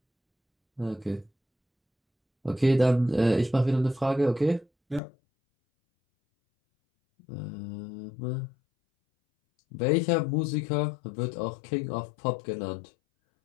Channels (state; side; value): drops out; right; at 5.0 s